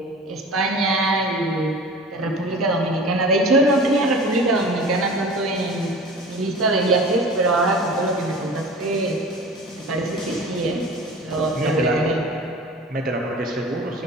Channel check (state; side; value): normal; both; correlation 0.39